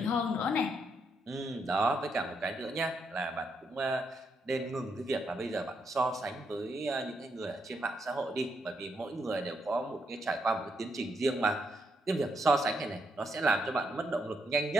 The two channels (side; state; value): both; normal; correlation 0.78